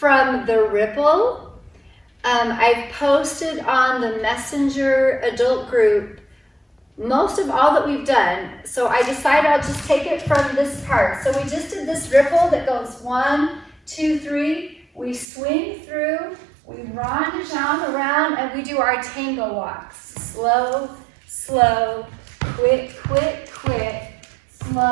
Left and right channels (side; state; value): left; drops out; at 15.2 s